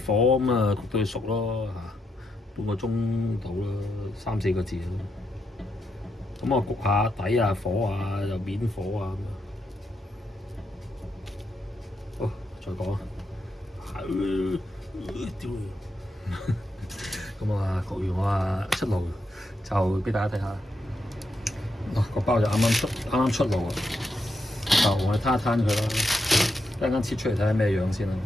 火咁啊焗到佢熟咯半個鐘到啦，3-4個字咯。咁我焗下底啊、火啊、又面火啊咁好，再講啊。咁啊焗完我出爐就俾大家睇下。個包就啱啱出爐啊，就我哋攤一攤佢啦。一陣間切出嚟睇下咩樣先啦，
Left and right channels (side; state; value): both; normal; correlation 0.82